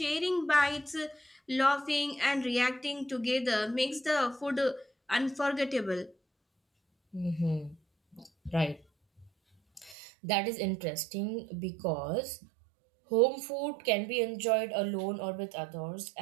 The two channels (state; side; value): drops out; left; at 10.0 s